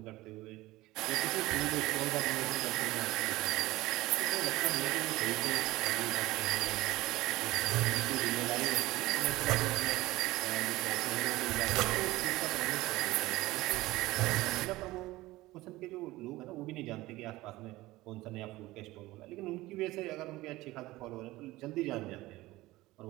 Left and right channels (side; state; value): left; quieter; 18.5 dB